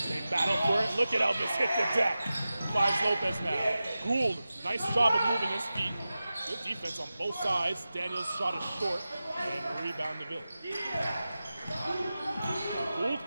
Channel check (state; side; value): inverted; both; correlation -0.94